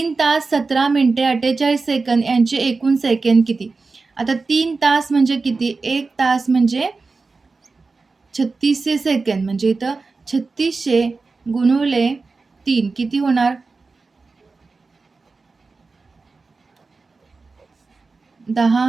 तास 17 मिनिटे 48 सेकंद यांचे एकूण सेकंद किती? आता 3 तास म्हणजे किती? 1 तास म्हणजे 3600 सेकंद, म्हणजे इथं 3600 गुणिले 3 किती होणार?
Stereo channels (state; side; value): quieter; left; 4.0 dB